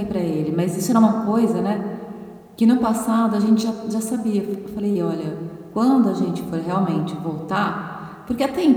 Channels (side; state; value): both; identical; correlation 1.00